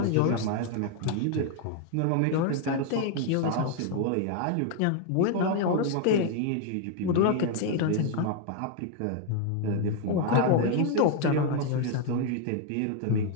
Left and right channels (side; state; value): both; different; correlation 0.00